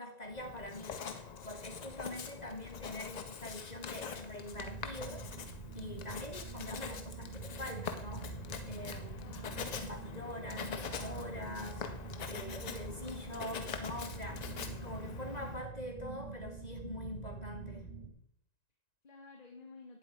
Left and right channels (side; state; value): right; late; 1.9 ms